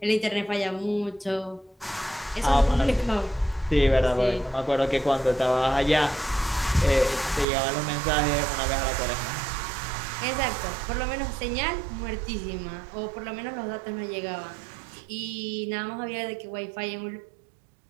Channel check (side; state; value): left; drops out; at 7.5 s